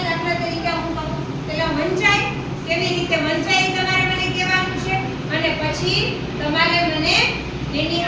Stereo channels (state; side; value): identical; both; correlation 1.00